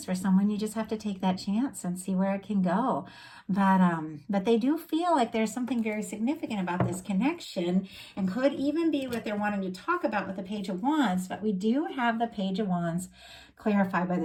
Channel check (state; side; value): identical; both; correlation 1.00